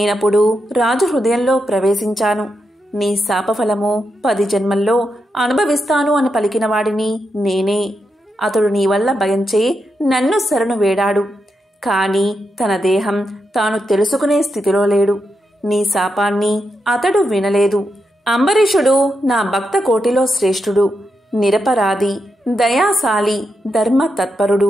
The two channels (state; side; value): normal; both; correlation 0.85